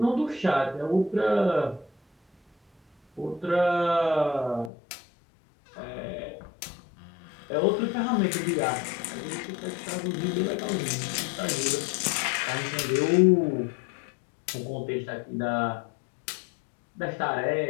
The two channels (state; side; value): drops out; right; at 4.7 s